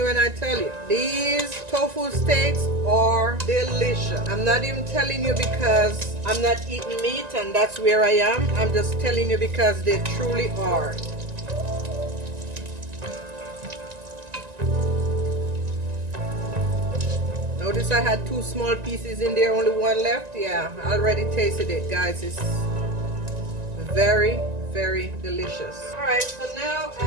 when I tell you, these tofu steaks are delicious. I'm not even telling you because I'm not eating meat and that's where I am. I'm just telling you because they truly are. Notice I had 2 small pieces in there, only 1 left. Yeah, I already tasted it, guys. It's very, very delicious. All right, so now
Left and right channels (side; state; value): left; late; 1.9 ms